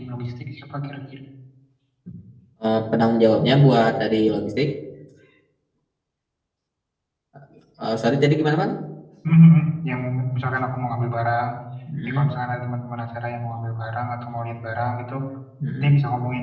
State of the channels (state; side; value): identical; both; correlation 1.00